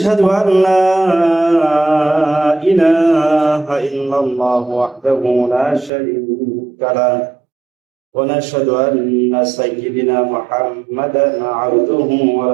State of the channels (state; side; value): drops out; left; at 5.9 s